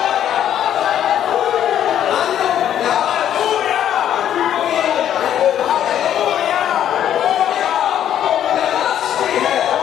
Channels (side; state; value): right; quieter; 10.4 dB